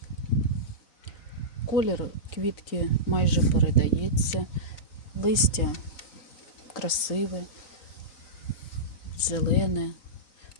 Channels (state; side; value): late; right; 4.0 ms